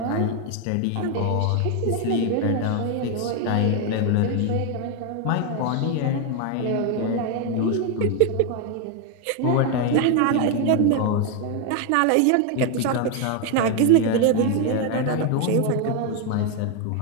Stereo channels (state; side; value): different; both; correlation 0.01